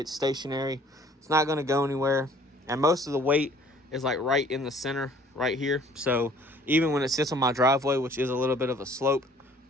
stationary. It's not going to go anywhere. And most of the weight is like right in the center right here. So even when it sits on my driveway, which is a little bit of a slope,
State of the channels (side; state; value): both; normal; correlation 0.54